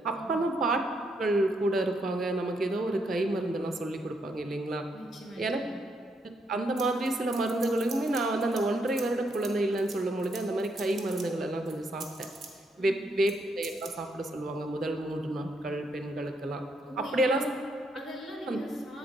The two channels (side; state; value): both; normal; correlation 0.76